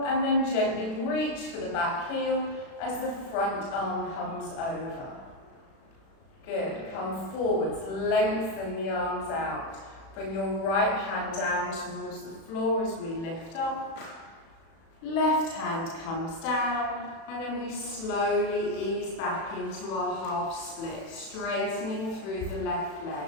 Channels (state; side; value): late; right; 36 ms